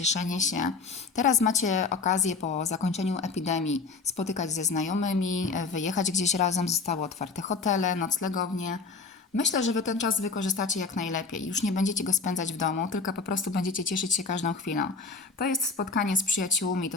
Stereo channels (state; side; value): quieter; right; 4.4 dB